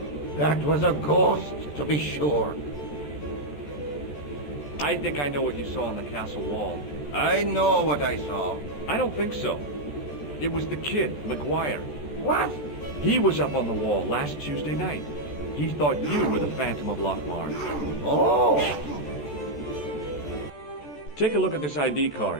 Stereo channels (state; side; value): late; right; 13 ms